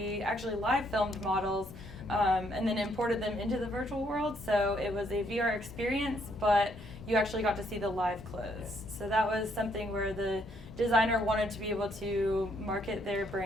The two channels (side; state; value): left; noise; hum, 15 dB below the sound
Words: actually live filmed models and then imported them into the virtual world. So it was a VR experience, but you actually got to see the live clothes. So that was something where the designer wanted to be able to market their